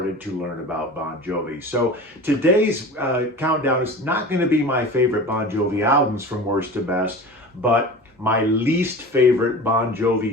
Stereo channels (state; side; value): normal; both; correlation 0.35